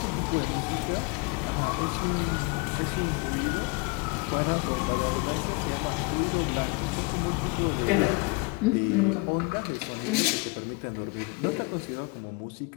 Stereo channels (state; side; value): quieter; right; 27.1 dB